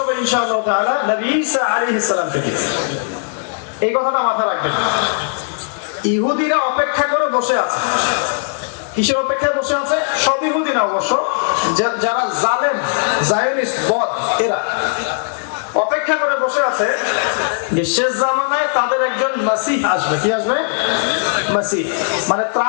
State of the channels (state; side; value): silent; right; digital silence